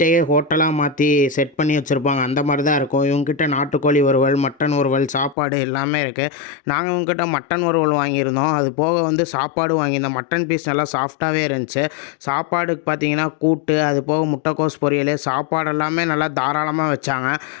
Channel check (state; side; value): drops out; right; at 5.4 s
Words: ஹோட்டலாக மாற்றி செட் பண்ணி வச்சுருப்பாங்க. அந்த மாதிரி தான் இருக்கும். இவங்ககிட்ட நாட்டுக்கோழி வறுவல், மட்டன் வறுவல், சாப்பாடு எல்லாமே இருக்குது. நாங்கள் இவங்ககிட்ட மட்டன் வறுவல் வாங்கியிருந்தோம். அது போக வந்து சாப்பாடு வாங்கியிருந்தோம். மட்டன் பீஸ் நல்லா சாஃப்டாகவே இருந்துச்சு. சாப்பாடுக்கு பார்த்திங்கன்னா கூட்டு, அது போக முட்டைக்கோஸ் பொரியல், சாப்பாடு எல்லாமே நல்லா தாராளமாக வச்சாங்க.